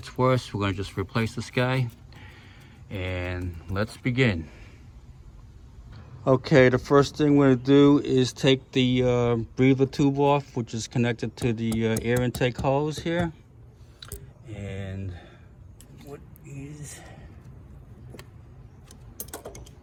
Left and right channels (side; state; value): both; identical; correlation 1.00